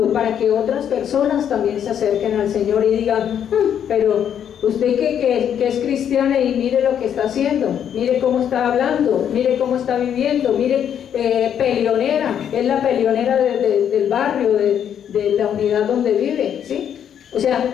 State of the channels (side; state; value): right; quieter; 9.1 dB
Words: para que otras personas también se acerquen al Señor y digan, pero usted que es cristiana y mire lo que está haciendo, mire cómo está hablando, mire cómo está viviendo, mire, peleonera, es la peleonera del barrio, de la unidad donde vive, ¿sí? O sea,